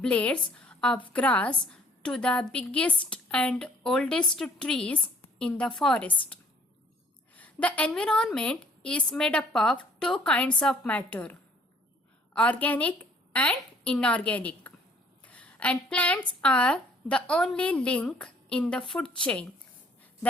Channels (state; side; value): normal; both; correlation 0.59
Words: of grass to the biggest and oldest trees in the forest. The environment is made up of two kinds of matter, organic and inorganic. And plants are the only link in the food chain